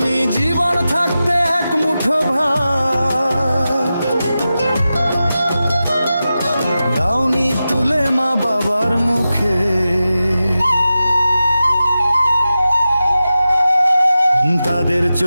জীবন থাকতে এক মুঠো ভাত দাওনি তুলে মা বাবার মুখে, তাদের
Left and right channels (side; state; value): both; inverted; correlation -0.93